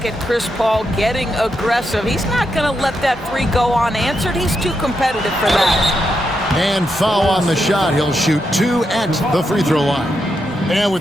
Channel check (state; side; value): normal; both; correlation 0.83